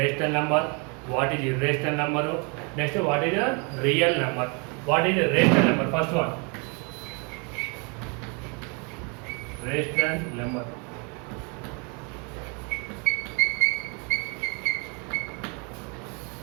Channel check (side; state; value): left; quieter; 33.5 dB